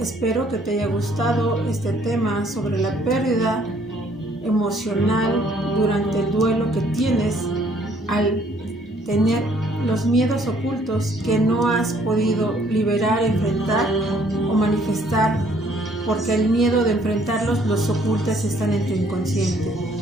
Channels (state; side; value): normal; both; correlation 0.63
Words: que te haya gustado este tema sobre la pérdida emocional durante el duelo que tienes al tener los miedos ocultos que no has podido liberar, enfrentar o manifestar, porque el miedo de enfrentarlos los ocultas, están en tu inconsciente.